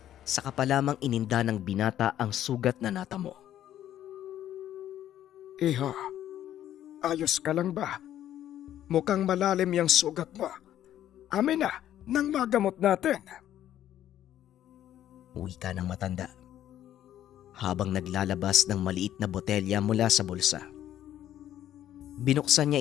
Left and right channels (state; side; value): quieter; right; 11.7 dB